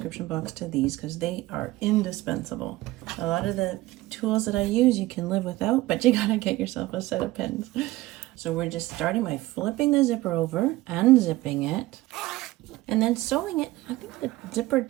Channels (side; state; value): left; quieter; 18.2 dB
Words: box to these because they are indispensable. A lot of the tools that I use you can live without, but you gotta get yourself a set of pens. So we're just starting by flipping the zipper over, unzipping it, and then sewing it. I think the zipper